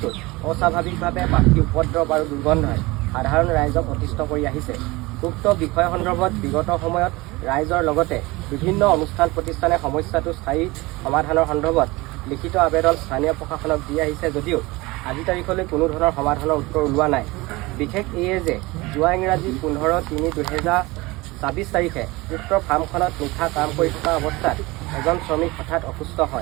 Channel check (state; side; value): quieter; left; 22.2 dB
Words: অস্বাভাৱিকভাৱে পাখি উপদ্ৰৱ আৰু দুৰ্গন্ধই সাধাৰণ ৰাইজক অতিষ্ঠ কৰি আহিছে উক্ত বিষয় সন্দৰ্ভত বিগত সময়ত ৰাইজৰ লগতে বিভিন্ন অনুষ্ঠান প্ৰতিষ্ঠানে সমস্যাটো স্থায়ী সমাধানৰ সন্দৰ্ভত লিখিত আবেদন স্থানীয় প্ৰশাসনক দি আহিছে যদিও আজি তাৰিখলৈ কোনো ধৰণৰ সমাধানৰ উত্তৰ ওলোৱা নাই বিশেষ এয়ে যে যোৱা ইংৰাজী 15/3/2026 তাৰিখে উক্ত ফাৰ্মখনত নিশা কাম কৰি থকা অৱস্থাত এজন শ্ৰমিক হঠাৎ অসুস্থ